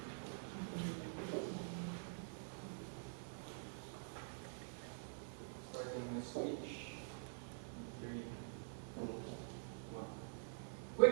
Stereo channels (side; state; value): left; silent; digital silence